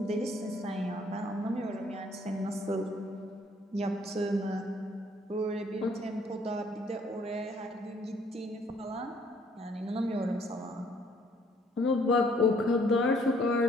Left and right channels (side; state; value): both; normal; correlation 0.63